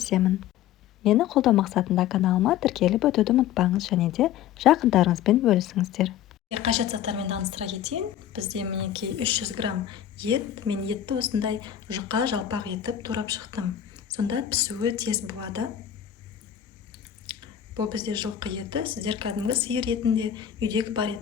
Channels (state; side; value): quieter; right; 10.6 dB